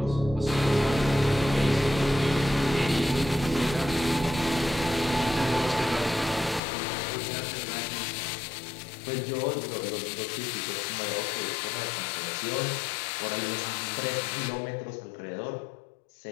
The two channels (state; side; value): drops out; right; at 6.6 s